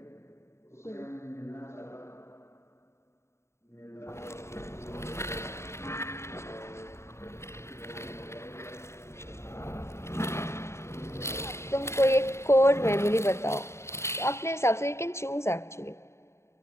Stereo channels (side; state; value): right; late; 0.13 ms